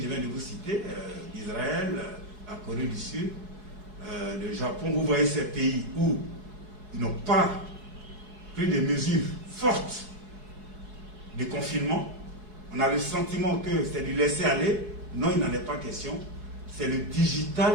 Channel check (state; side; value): late; left; 4.6 ms